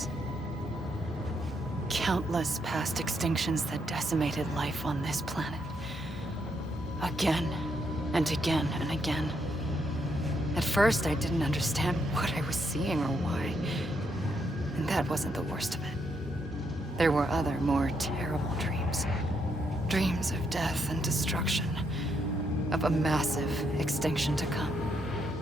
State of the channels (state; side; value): normal; both; correlation 0.77